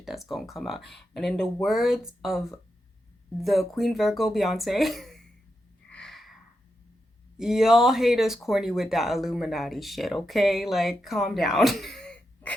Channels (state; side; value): normal; both; correlation 0.87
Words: that's gonna come out. And in the words of the Queen Virgo Beyonce, y'all haters corny with that Illuminati shit, okay? Like, calm down.